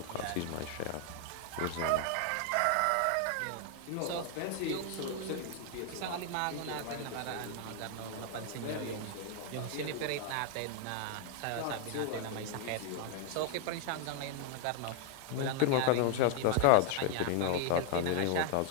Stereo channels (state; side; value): different; both; correlation 0.00